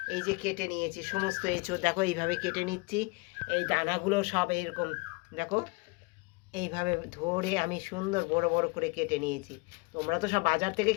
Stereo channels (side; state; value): right; quieter; 27.8 dB